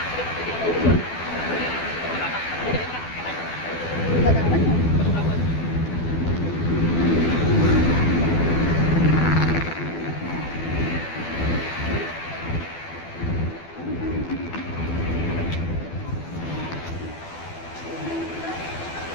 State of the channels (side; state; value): right; late; 12 ms